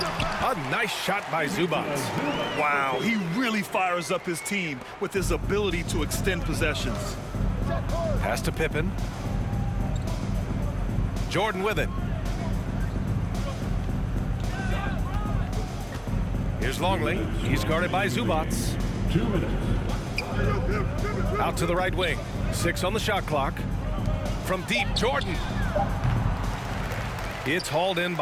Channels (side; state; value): both; identical; correlation 1.00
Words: nice shot by Zubac. Wow, he really fires up his team with his ability to extend possessions. Pass to Pippen. Jordan with it. Here's Longley. He's guarded by Zubac. 2 minutes. Out to the right wing. 6 on the shot clock. From deep, Jordan. It's hauled in